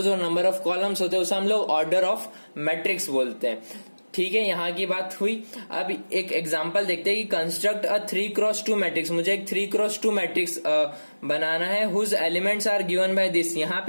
और नंबर ऑफ कॉलम्स होते हैं उसे हम लोग ऑर्डर ऑफ मैट्रिक्स बोलते हैं। ठीक है, यहाँ की बात हुई। अब एक एग्जांपल देखते हैं कि कंस्ट्रक्ट अ 3x2 मैट्रिक्स। मुझे एक 3x2 मैट्रिक्स बनाना है whose elements are given by this. यहाँ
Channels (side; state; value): both; inverted; correlation -1.00